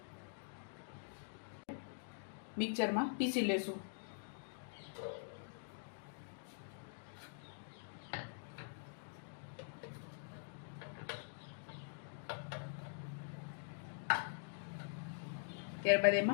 મિક્સરમાં પીસી લેશું. ત્યારબાદ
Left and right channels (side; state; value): right; silent; digital silence